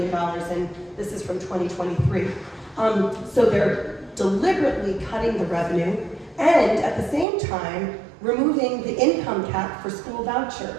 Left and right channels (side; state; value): left; drops out; at 7.2 s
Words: and this is from 2023. So they're deliberately cutting the revenue and at the same time removing the income cap for school